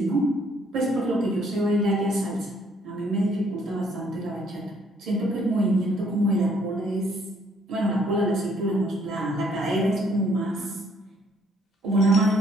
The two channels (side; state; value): both; normal; correlation 0.65